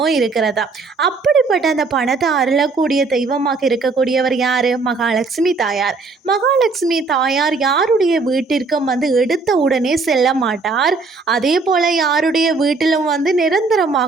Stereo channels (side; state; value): left; quieter; 4.1 dB